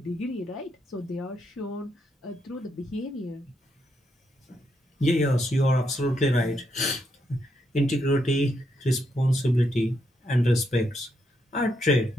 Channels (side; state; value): both; normal; correlation 0.79